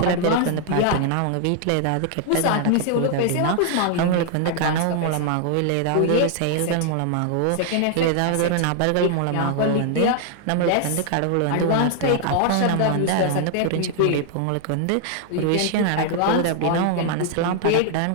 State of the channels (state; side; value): different; both; correlation 0.00